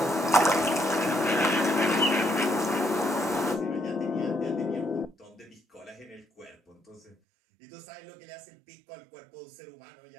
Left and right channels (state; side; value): drops out; left; at 7.2 s